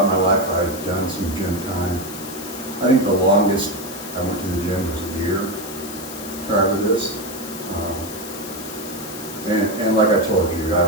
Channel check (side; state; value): left; noise; hiss, 12 dB below the sound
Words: my life, I've done some gym time. I think the longest I went to the gym was a year prior to this. And like I told you, I